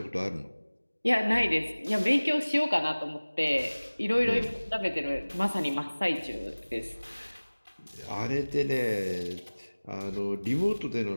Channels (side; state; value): both; inverted; correlation -1.00